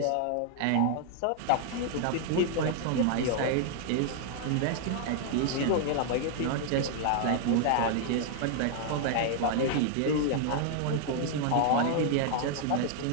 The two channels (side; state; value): both; different; correlation 0.00